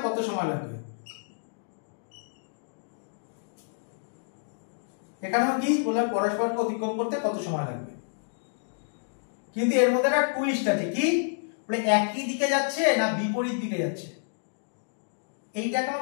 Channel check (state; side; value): silent; right; digital silence